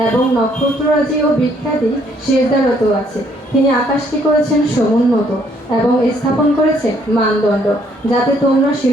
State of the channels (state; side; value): normal; both; correlation 0.67